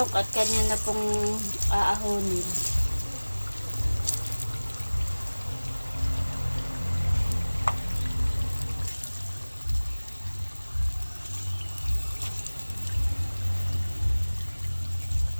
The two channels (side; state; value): both; inverted; correlation -1.00